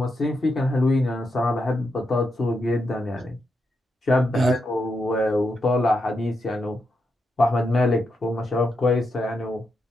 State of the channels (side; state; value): both; normal; correlation 0.84